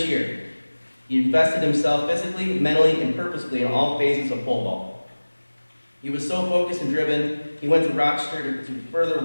year, he invested himself physically, mentally, and purposefully in all phases of pole vault. He was so focused and driven, he went to Rochester to further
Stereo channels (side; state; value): both; inverted; correlation -1.00